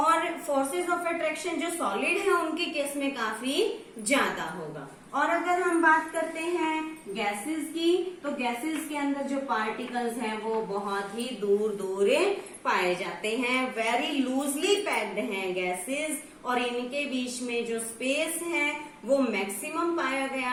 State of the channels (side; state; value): both; identical; correlation 1.00